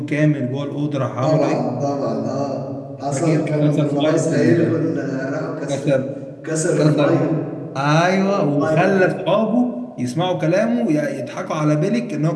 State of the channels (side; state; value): both; identical; correlation 1.00